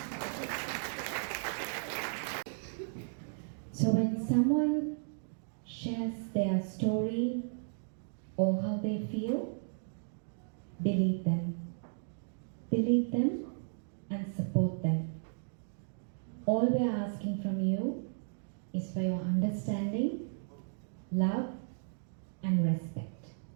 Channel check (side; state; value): left; silent; digital silence